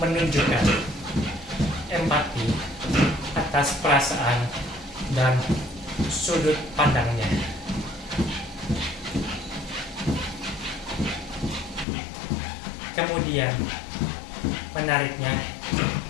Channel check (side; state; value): right; drops out; at 11.9 s